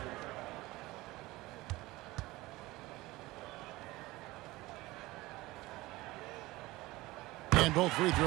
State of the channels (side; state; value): left; quieter; 19.7 dB